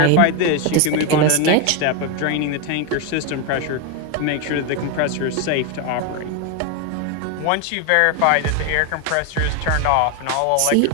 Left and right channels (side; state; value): both; different; correlation 0.02